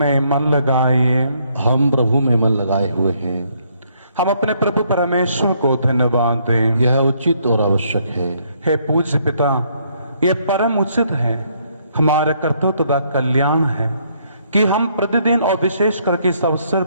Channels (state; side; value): inverted; both; correlation -0.69